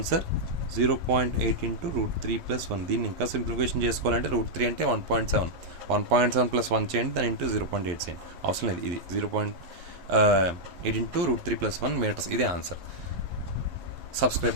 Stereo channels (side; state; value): left; late; 11 ms